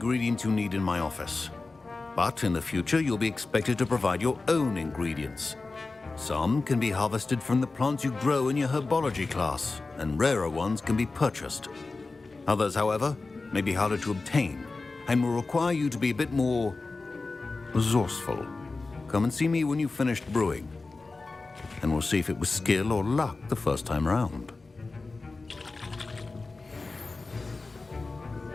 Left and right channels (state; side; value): quieter; right; 3.7 dB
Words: you need in my office. But in the future, you'll be expected to provide your own ingredients. Some can be harvested from the plants you grow in your herbology class, and rarer ones can be purchased. Others, however, may be harder to obtain, and will require you to be a bit more resourceful. Come and see me when you've finished brewing, and we'll see if it was skill or luck the first time round.